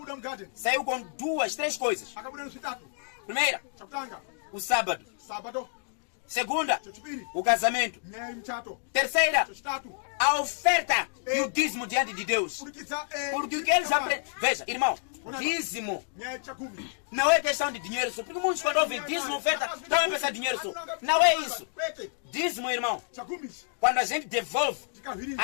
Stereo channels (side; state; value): right; silent; 58 dB below the other